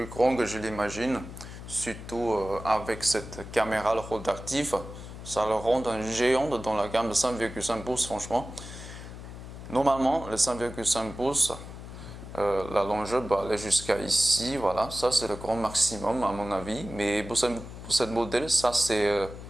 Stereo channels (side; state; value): left; noise; hum, 12 dB below the sound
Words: grand que je l'imagine. Surtout avec cette caméra rotative. Ça le rend un géant dans la gamme de 5,5 pouces, franchement. Normalement, le 5,5 pouces, la longueur peut aller jusqu'à ici. Voilà, ça c'est le grand maximum à mon avis. Mais pour cette modèle, ça c'est